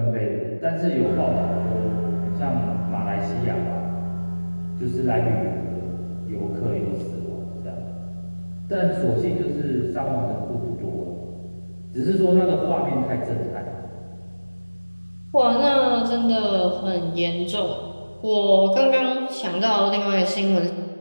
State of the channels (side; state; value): both; inverted; correlation -1.00